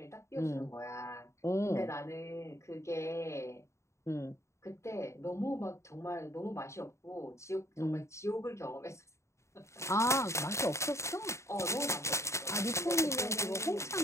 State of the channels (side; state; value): right; late; 0.14 ms